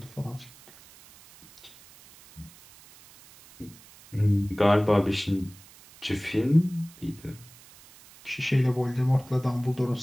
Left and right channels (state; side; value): noise; right; hiss, 23 dB below the sound